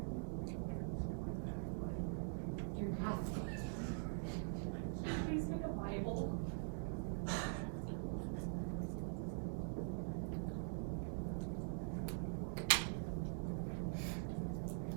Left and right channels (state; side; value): silent; left; digital silence